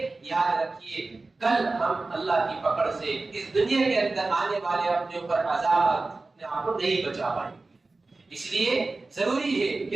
یاد رکھیے کل ہم اللہ کی پکڑ سے اس دنیا کے اندر آنے والے اپنے اوپر عذاب اپنے آپ کو نہیں بچا پائیں گے۔ اس لیے ضروری ہے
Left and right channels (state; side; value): quieter; left; 3.4 dB